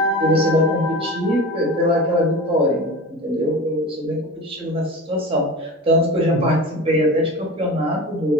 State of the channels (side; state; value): both; normal; correlation 0.32